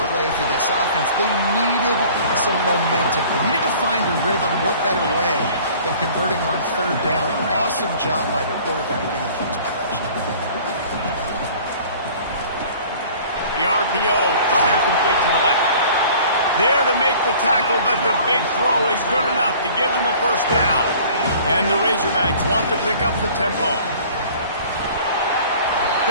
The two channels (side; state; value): both; inverted; correlation -0.49